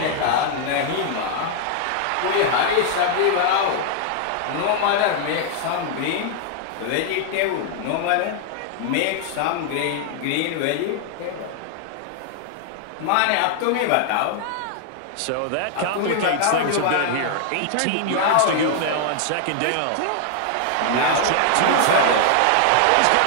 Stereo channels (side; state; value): both; different; correlation 0.00